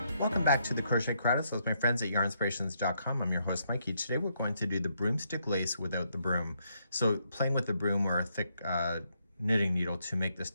Welcome back to the Crochet Credits with my friends at yarnspirations.com. I'm your host Mikey. Today we're going to do the broomstick lace without the broom. So playing with the broom or a thick knitting needle to make the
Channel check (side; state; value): both; inverted; correlation -0.76